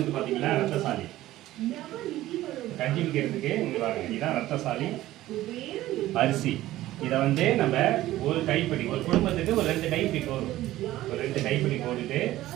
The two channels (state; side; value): quieter; left; 15.4 dB